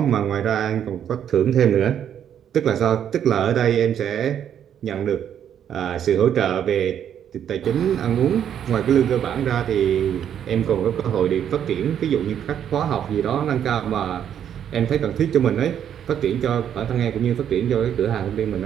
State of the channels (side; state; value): left; quieter; 9.3 dB